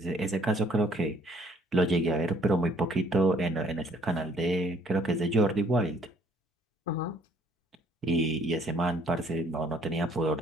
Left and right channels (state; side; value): normal; both; correlation 0.61